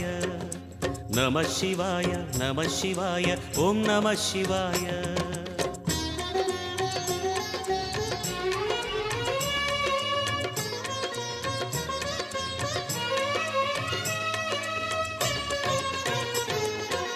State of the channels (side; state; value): both; identical; correlation 1.00